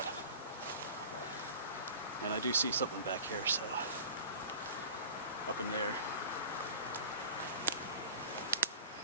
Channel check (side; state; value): both; inverted; correlation -0.40